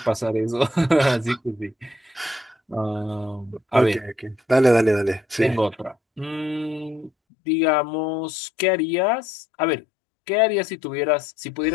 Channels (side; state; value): right; drops out; at 7.1 s